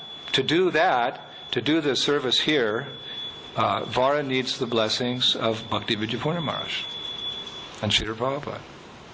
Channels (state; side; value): identical; both; correlation 1.00